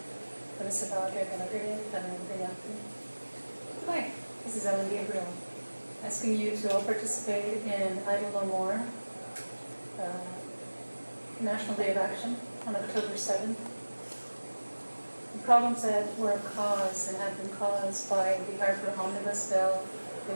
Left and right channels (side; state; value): both; inverted; correlation -1.00